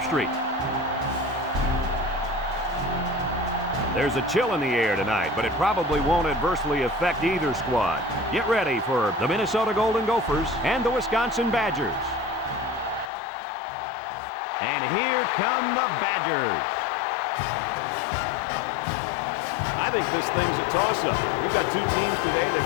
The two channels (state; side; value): drops out; right; at 13.1 s